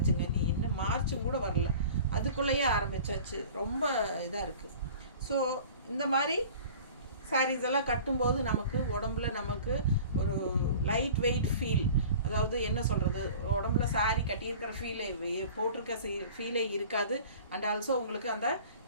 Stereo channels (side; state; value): both; inverted; correlation -0.43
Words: நீ இன்னும் மார்ச்சும் கூட வரல, அதுக்குள்ளேயே ஆரம்பிச்சாச்சு. ரொம்ப இதாக இருக்குது. ஸோ இந்த மாதிரி சாரீஸ் எல்லாம் கட்டும்போது நமக்கு உடம்புல நமக்கு ஒரு லைட் வெயிட் ஃபீல், அதாவது என்ன சொல்கிறது, உடம்புல சாரீ கட்டியிருக்கிற ஃபீலே, போட்டிருக்க ஃபீலே இருக்காது. அண்ட் ஆல்சோ உங்களுக்கு அந்த